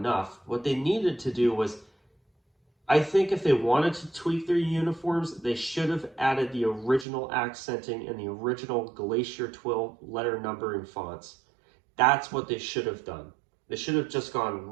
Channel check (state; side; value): drops out; left; at 7.1 s